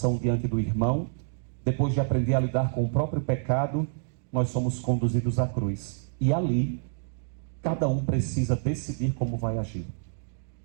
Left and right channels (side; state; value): left; silent; digital silence